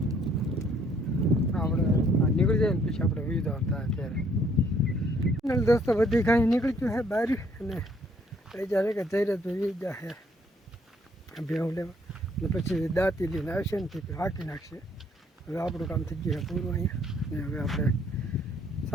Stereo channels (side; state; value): both; normal; correlation 0.65